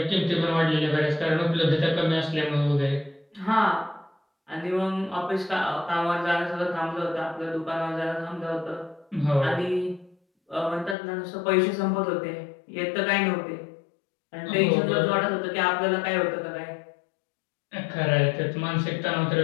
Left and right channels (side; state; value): right; drops out; at 11.0 s